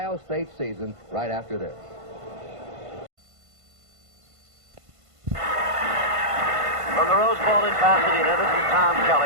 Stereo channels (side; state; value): left; late; 1.5 ms